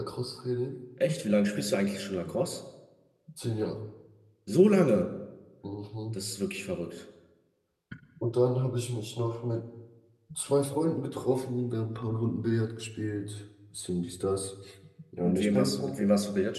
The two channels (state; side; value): identical; both; correlation 1.00